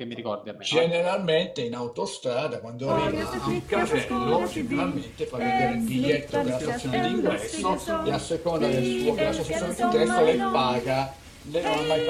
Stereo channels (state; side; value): identical; both; correlation 1.00